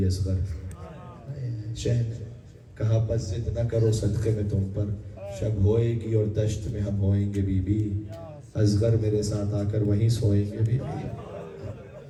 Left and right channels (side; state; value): both; identical; correlation 1.00